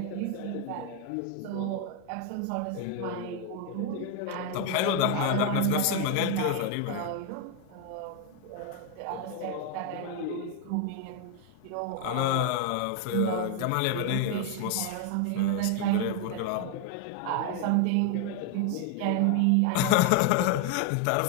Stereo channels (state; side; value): different; both; correlation 0.01